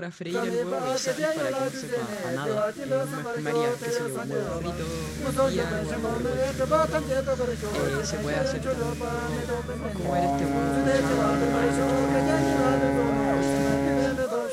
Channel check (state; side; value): identical; both; correlation 1.00